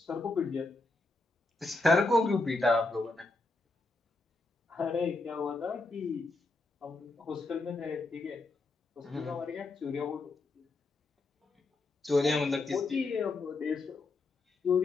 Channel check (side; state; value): right; quieter; 3.3 dB